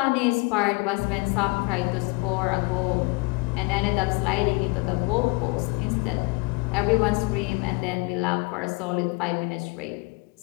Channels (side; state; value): right; quieter; 26.8 dB